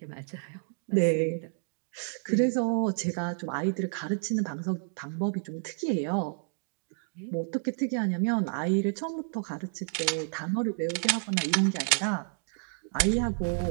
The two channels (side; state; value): left; silent; 58 dB below the other